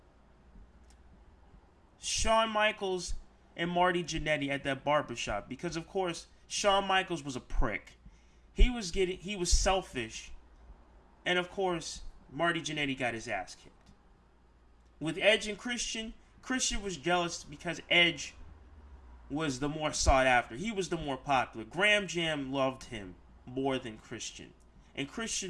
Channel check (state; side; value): identical; both; correlation 1.00